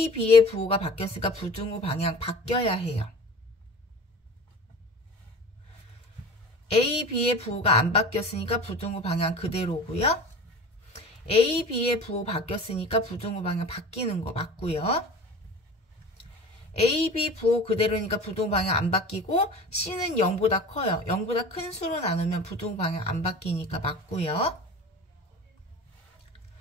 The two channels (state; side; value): normal; both; correlation 0.38